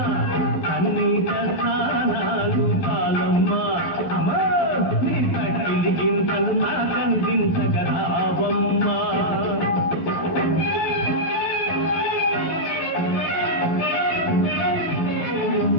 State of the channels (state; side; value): late; right; 11 ms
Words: కన్నీట స్నానాలు చాలమ్మా. అమ్మా నీ తక్కిలి గింతలు నరకందించగరావమ్మా.